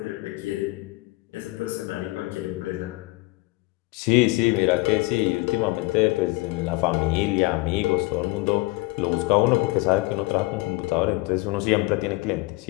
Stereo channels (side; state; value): right; quieter; 23.0 dB